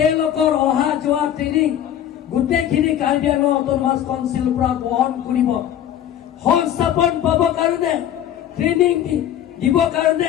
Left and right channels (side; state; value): right; quieter; 10.7 dB